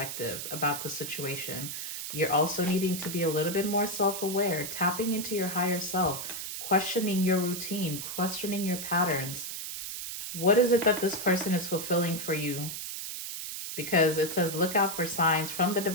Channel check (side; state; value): right; noise; hiss, 6 dB below the sound